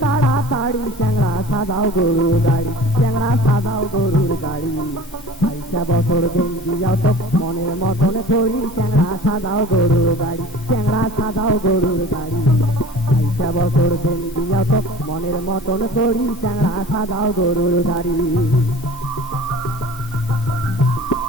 তাড়াতাড়ি চ্যাংড়া সাজাও গরুর গাড়ি, চ্যাংড়া সাজাও গরুর গাড়ি। আইসা বছর দিন দিয়াও তো মনের মতন করি, চ্যাংড়া সাজাও গরুর গাড়ি, চ্যাংড়া সাজাও গরুর গাড়ি। আইসা বছর দিন দিয়াও তো মনের মতন করি, চ্যাংড়া সাজাও গরুর গাড়ি।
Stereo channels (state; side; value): normal; both; correlation 0.42